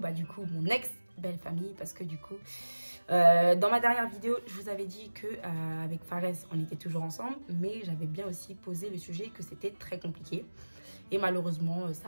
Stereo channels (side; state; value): both; inverted; correlation -1.00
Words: du coup, mon ex-belle famille, parce que du coup, dans ma dernière vidéo, je vous avais dit que avec Fares, on était toujours ensemble, mais j'avais bien aussi posé le sujet que c'était très compliqué. Et malheureusement,